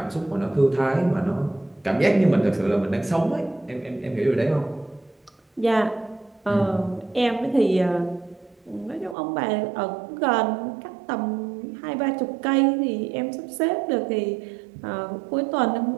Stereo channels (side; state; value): left; drops out; at 9.2 s